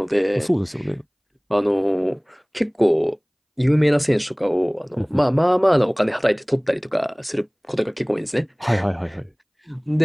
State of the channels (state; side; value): identical; both; correlation 1.00